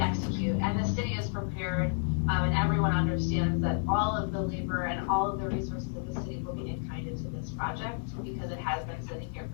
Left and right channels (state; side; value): silent; right; 57 dB below the other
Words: And the city is prepared, and everyone understands that all of the labor and all of the resources of the city will be in-kinded to this project because it has been sitting here